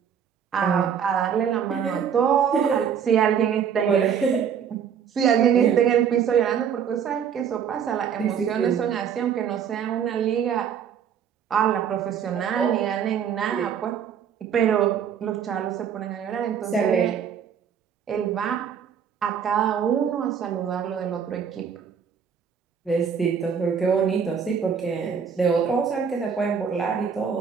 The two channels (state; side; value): quieter; left; 7.7 dB